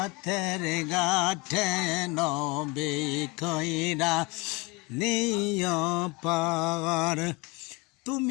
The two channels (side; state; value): right; quieter; 24.6 dB